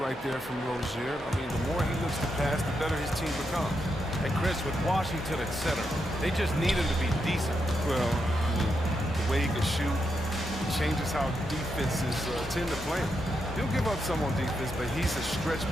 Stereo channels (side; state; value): both; normal; correlation 0.83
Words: right there from Rozier. I mean, the more he looks to pass, the better his team becomes. And Chris, with Washington at center, they just need him to be decent. Well, I mean, the way he can shoot changes how defenses tend to play him. He'll give up some on defense, but he's a stretch